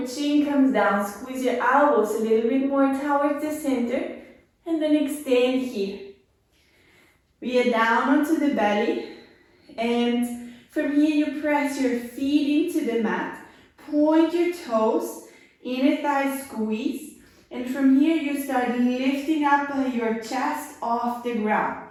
chin comes down, squeeze your elbows a little bit more towards the center, and then extend here. We are down onto the belly, and from here you press your feet into the mat, point your toes, inner thigh squeeze, and from here you start lifting up your chest off the ground.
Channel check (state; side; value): identical; both; correlation 1.00